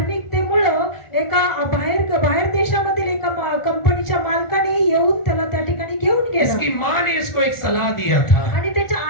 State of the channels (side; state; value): right; late; 1.4 ms